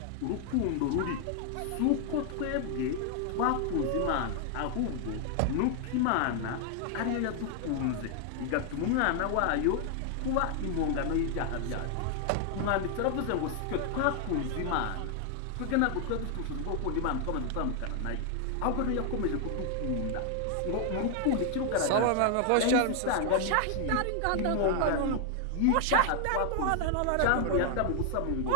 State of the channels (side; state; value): both; different; correlation 0.00